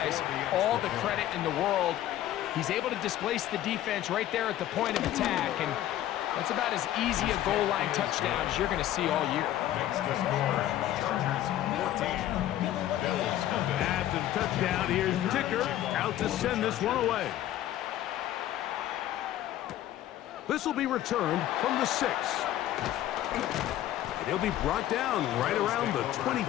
all the credit in the world. He's able to displace the defense right there at the point of attack, and that's about as easy a goal line touchdown as you're going to see all year. Makes the score, Chargers 14, Bills nothing. After the touchdown, here's Ticker out to send this one away. This will be returned from the 6. And he'll be brought down right around the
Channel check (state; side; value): quieter; right; 13.0 dB